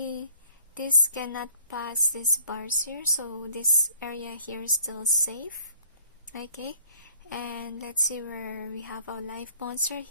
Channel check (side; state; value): both; inverted; correlation -0.57